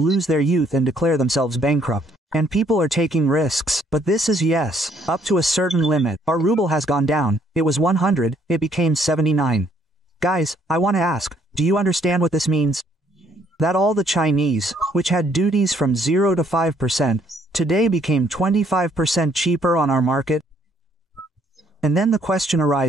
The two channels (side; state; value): both; normal; correlation 0.66